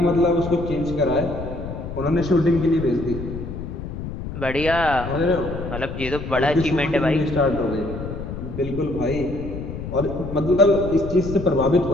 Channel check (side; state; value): left; noise; rumble, 8 dB below the sound